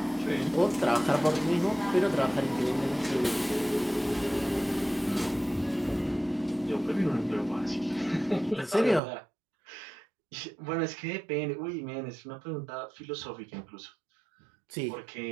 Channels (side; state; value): left; drops out; at 9.0 s